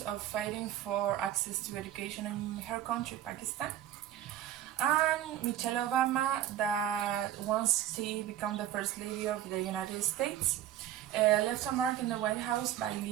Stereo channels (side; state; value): left; quieter; 12.1 dB